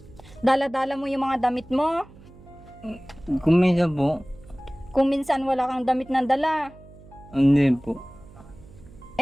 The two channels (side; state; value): right; noise; hum, 22 dB below the sound